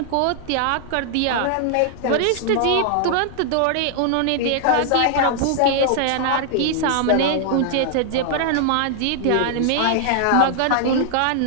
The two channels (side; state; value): both; different; correlation 0.00